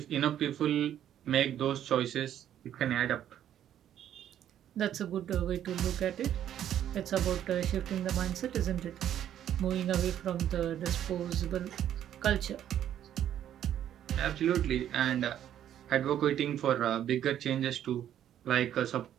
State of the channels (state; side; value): quieter; left; 10.7 dB